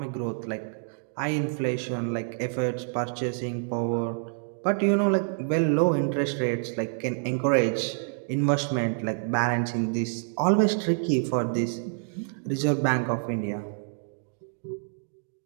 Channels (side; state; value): left; silent; digital silence